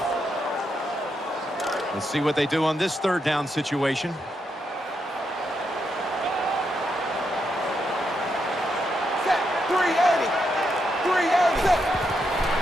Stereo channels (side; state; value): both; normal; correlation 0.81